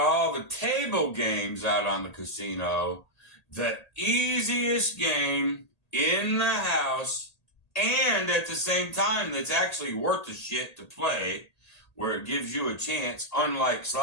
the table games out on the casino, the easiest game in the house and at the same time that's actually worth the shit to play, where it gives you a chance, unlike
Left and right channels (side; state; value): right; late; 1.8 ms